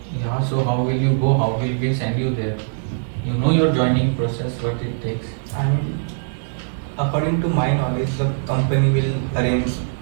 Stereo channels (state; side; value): silent; left; digital silence